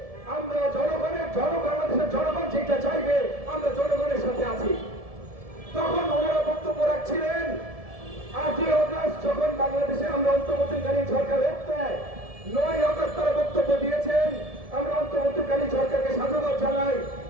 আমরা বাংলাদেশের জনগণ যেটা চাইবে আমরা জনগণের সাথে আছি। তখন ওনারা বক্তব্য রাখছিলেন 8ই আগস্ট যখন বাংলাদেশে আমরা অন্তর্বর্তীকালীন সরকার দেয়, 9ই আগস্ট তারা বক্তব্য দিয়েছেন আমরা অন্তর্বর্তীকালীন সরকারকে সাধুবাদ জানাই,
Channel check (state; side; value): late; left; 1.7 ms